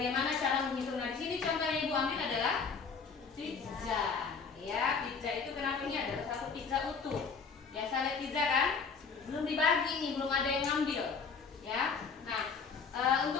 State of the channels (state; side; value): quieter; right; 5.4 dB